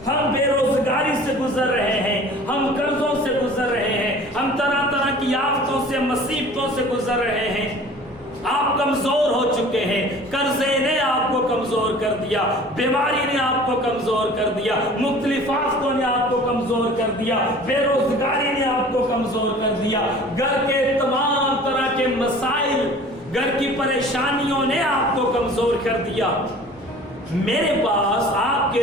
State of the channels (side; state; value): both; normal; correlation 0.45